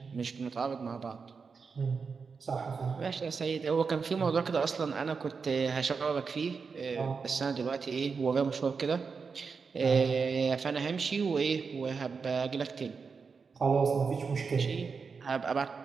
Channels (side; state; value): left; quieter; 5.2 dB